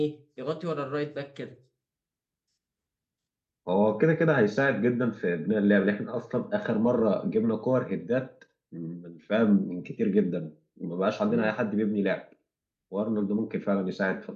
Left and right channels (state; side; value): identical; both; correlation 1.00